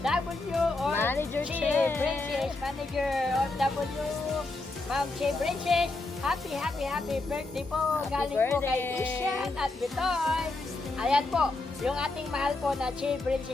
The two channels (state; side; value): quieter; right; 3.1 dB